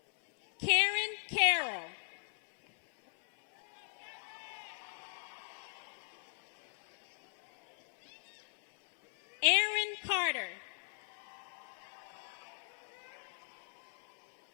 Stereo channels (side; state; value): right; silent; 52 dB below the other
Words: Karen Carroll. Aaron Carter.